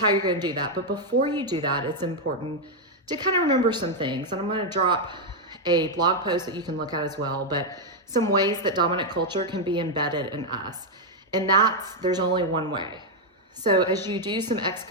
you're going to do that. But before you do that, it's important to kind of remember some things. And I'm going to drop a blog post that you can look at as well, but some ways that dominant culture can be embedded in us. And there's only one way. So as you do some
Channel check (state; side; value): normal; both; correlation 0.01